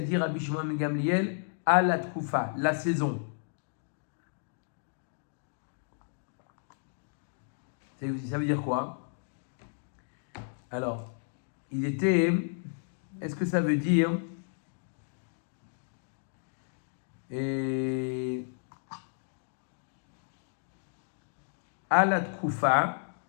Rabbi Shimon ben Gamliel à la Tkoufa, la saison. Ça veut dire quoi? Alors, est-ce que ça veut dire Alat Kufa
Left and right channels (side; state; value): right; silent; digital silence